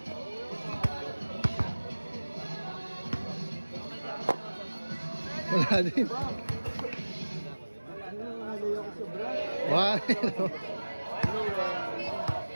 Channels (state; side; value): inverted; both; correlation -1.00